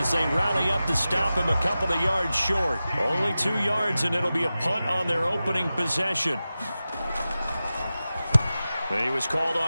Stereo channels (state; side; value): inverted; both; correlation -0.94